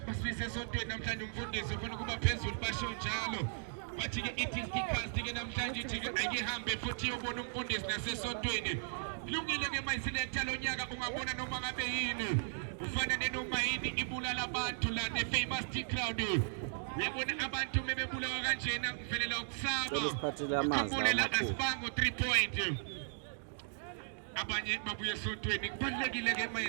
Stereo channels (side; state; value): left; silent; digital silence